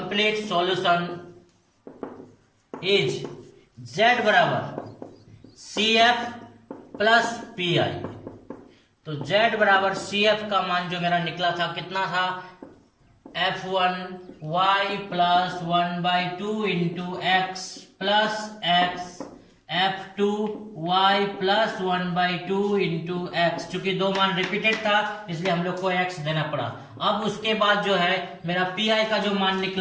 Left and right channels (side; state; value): both; identical; correlation 1.00